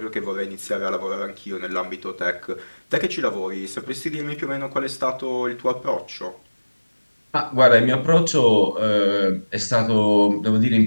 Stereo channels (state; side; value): inverted; both; correlation -1.00